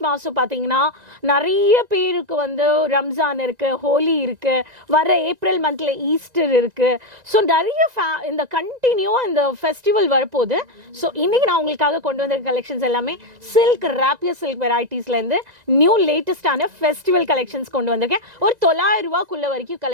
மாதம் பார்த்தீங்கன்னா நிறைய பேருக்கு வந்து ரம்ஜான் இருக்கு, ஹோலி இருக்கு, வர ஏப்ரல் மந்த்ல ஈஸ்டர் இருக்கு. ஸோ நிறைய இந்த கண்டினியூவா இந்த ஃபெஸ்டிவல் வரப்போகுது. ஸோ இன்னைக்கு நான் உங்களுக்காக கொண்டு வந்த கலெக்ஷன்ஸ் எல்லாமே சில்க் ராப்பியர் சில்க் வெரைட்டிஸ்ல இருந்து நியூ லேட்டஸ்டான ஃபெஸ்டிவல் கலெக்ஷன்ஸ் கொண்டு வந்திருக்கேன். ஒரு 900 ரூபாய்க்குள்ள வரைக்கும்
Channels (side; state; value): left; late; 1.9 ms